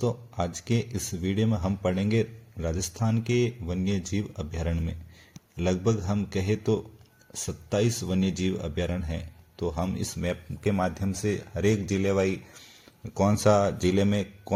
आज के इस वीडियो में हम पढ़ेंगे राजस्थान के वन्य जीव अभ्यारण्य में लगभग हम कहे तो 27 वन्य जीव अभ्यारण्य हैं। तो हम इस मैप के माध्यम से हर एक जिले वाई कौन सा जिले में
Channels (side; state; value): both; identical; correlation 1.00